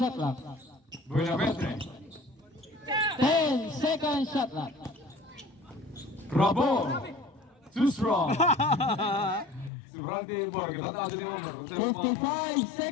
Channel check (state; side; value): drops out; right; at 9.7 s